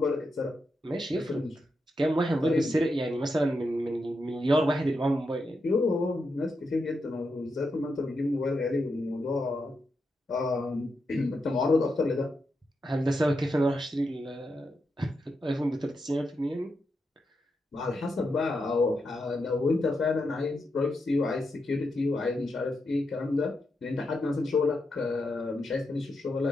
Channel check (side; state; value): both; normal; correlation 0.85